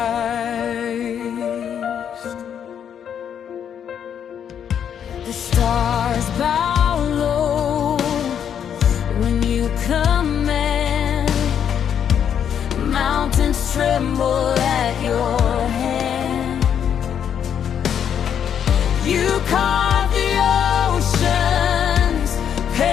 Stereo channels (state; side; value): quieter; right; 8.6 dB